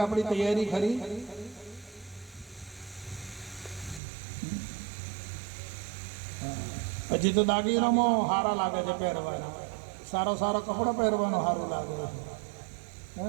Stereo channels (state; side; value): drops out; left; at 4.0 s